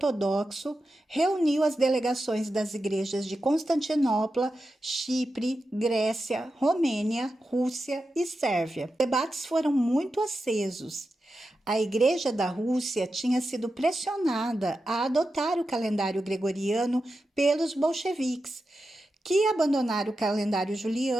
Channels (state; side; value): normal; both; correlation 0.90